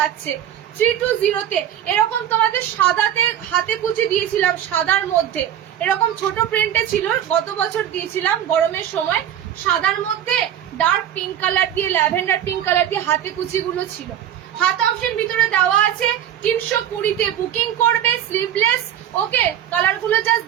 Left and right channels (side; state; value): left; quieter; 10.5 dB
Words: 320-তে এরকম তোমাদের সাদাতে হাতে কুচি দিয়েছিলাম, সাদার মধ্যে এরকম ছোট প্রিন্টে ছিল, গত বছর দিয়েছিলাম গরমের সময়। সাদার মধ্যে ডার্ক পিঙ্ক কালার দিয়ে, ল্যাভেন্ডার পিঙ্ক কালার দিয়ে হাতে কুচি গুলো ছিল। হাত অপশন ভিতরে দেওয়া আছে। 320-তে বুকিং করবে, স্লিভলেস। ওকে, কালার গুলো জাস্ট